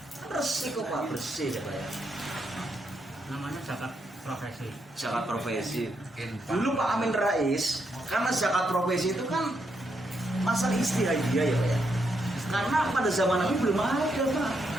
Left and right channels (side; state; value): both; normal; correlation 0.79